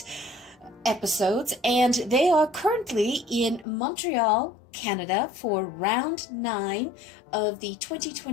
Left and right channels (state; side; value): drops out; right; at 3.7 s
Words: episodes, and they are currently in Montreal, Canada for round 9 of the